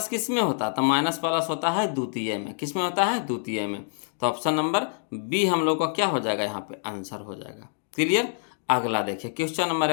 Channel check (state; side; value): silent; right; digital silence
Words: किस में होता, तो माइनस प्लस होता है द्वितीय में, किस में होता है द्वितीय में, तो ऑप्शन नंबर बी हम लोग का क्या हो जाएगा, यहाँ पे आंसर हो जाएगा। क्लियर। अगला देखिए क्वेश्चन नंबर